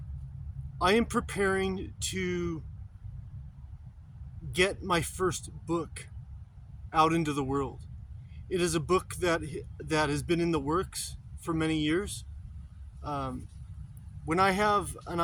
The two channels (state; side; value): identical; both; correlation 1.00